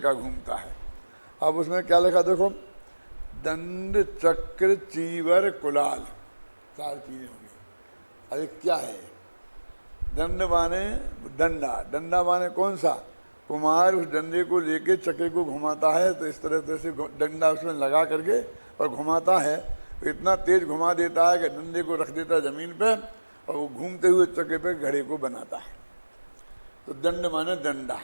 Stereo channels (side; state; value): both; inverted; correlation -1.00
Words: घूमता है। अब उसमें क्या लिखा देखो, दंड चक्र चीवर कुलाल, 4 चीजें होंगी। अरे क्या है, दंड माने डंडा, डंडा माने कौन सा, कुमार उस डंडे को लेके चक्के को घुमाता है, तो इस तरह से डंडा उसमें लगा करके और घुमाता है, तो इतना तेज घुमा देता है कि डंडे को रख देता है ज़मीन पे और वो घूमते हुए चक्के पे घड़े को बनाता है। तो दंड माने डंडा।